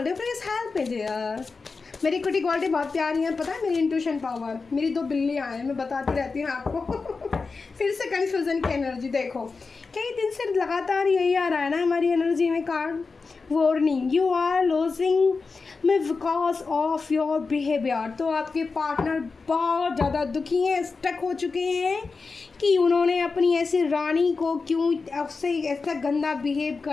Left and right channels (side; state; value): right; quieter; 4.4 dB